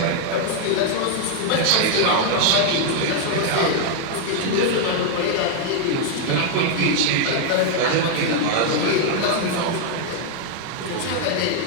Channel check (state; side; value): different; both; correlation 0.00